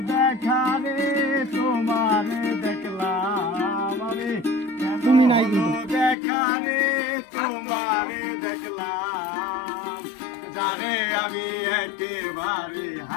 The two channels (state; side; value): drops out; right; at 6.2 s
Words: দেখা রে তোমার দেখলাম আমি, তুমি নাই কিন্তু। দেখা রে তোমার দেখলাম, জানে আমি একেবারে